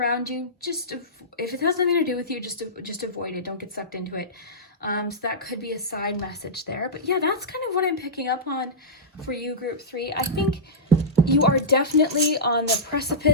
you, just if it has nothing to do with you, just avoid it. Don't get sucked into it. So that could be a side message there. But yeah, that's kind of what I'm picking up on for you, Group 3. I think you are definitely on the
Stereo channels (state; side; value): normal; both; correlation -0.14